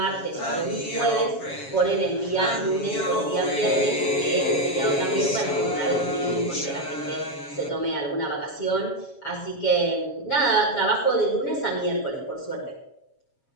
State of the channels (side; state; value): right; late; 7.3 ms